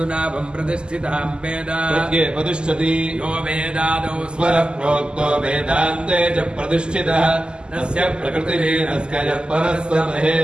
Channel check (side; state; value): left; late; 0.048 ms